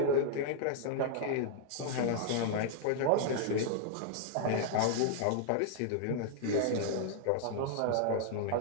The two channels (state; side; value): different; both; correlation -0.01